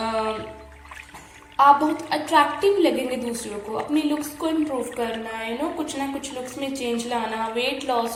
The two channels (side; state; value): both; identical; correlation 1.00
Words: आप बहुत अट्रैक्टिव लगेंगे दूसरों को, अपनी लुक्स को इम्प्रूव करना, कुछ ना कुछ लुक्स में चेंज लाना, वेट